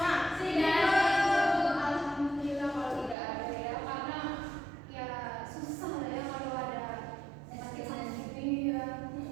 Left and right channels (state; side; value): drops out; left; at 3.2 s